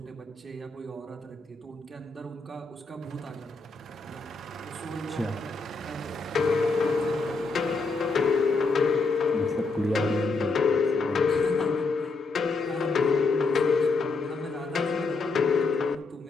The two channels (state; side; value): quieter; right; 3.9 dB